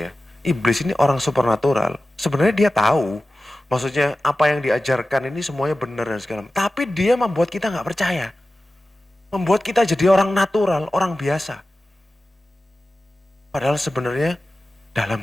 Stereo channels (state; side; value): normal; both; correlation 0.95